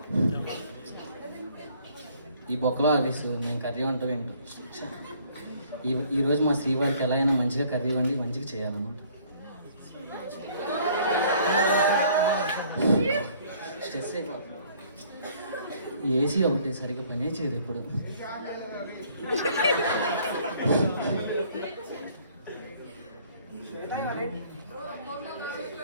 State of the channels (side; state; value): both; inverted; correlation -0.59